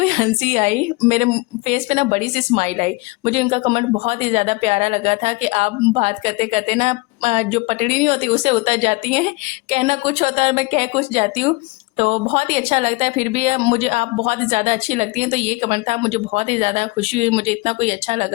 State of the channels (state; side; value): quieter; right; 24.5 dB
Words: हँसी आई, मेरे फेस पे ना बड़ी-सी स्माइल आई। मुझे उनका कमेंट बहुत ही ज़्यादा प्यारा लगा था कि आप बात करते-करते ना जो पटड़ी नहीं होती उससे उतर जाती हैं, कहना कुछ होता है और मैं कह कुछ जाती हूँ। तो बहुत ही अच्छा लगता है, फिर भी मुझे आप बहुत ही ज़्यादा अच्छी लगती हैं, तो ये कमेंट था, मुझे बहुत ही ज़्यादा खुशी हुई, मुझे इतना कोई अच्छा